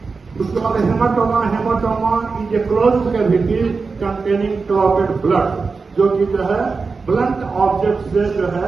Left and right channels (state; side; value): quieter; left; 4.5 dB